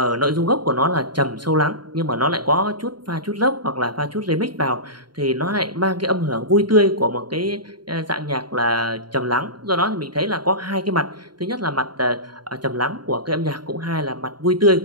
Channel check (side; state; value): left; late; 0.71 ms